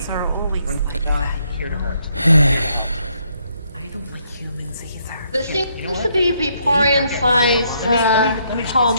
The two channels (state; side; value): inverted; both; correlation -0.73